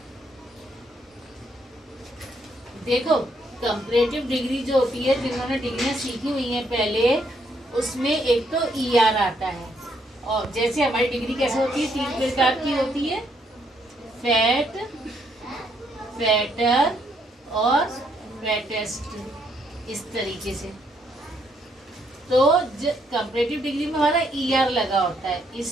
देखो, कंपैरेटिव डिग्री जो होती है, जिन्होंने डिग्रियां सीखी हुई हैं पहले, उसमें एक तो ER आता है। और जैसे हमारी डिग्री कैसे होती है, 3 प्रकार की होती है, फैट, फैटर और फैटेस्ट, इस तरीके से। तो कंपैरेटिव डिग्री में हमारा ER लगा होता है।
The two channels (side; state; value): both; normal; correlation 0.73